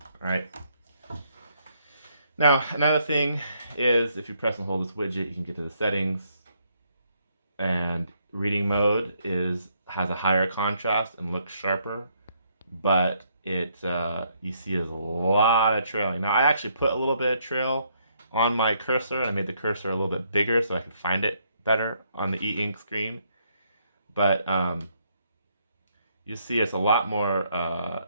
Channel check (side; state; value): both; inverted; correlation -0.72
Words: All right. Now, another thing is if you press and hold this widget, you can get to the settings. And reading mode has a higher contrast and looks sharper, but you see there's a lot of trailing. Now, I actually put a little bit of trail on my cursor. I made the cursor a little bit bigger so I could find it better on the e-ink screen. But you see it's a lot more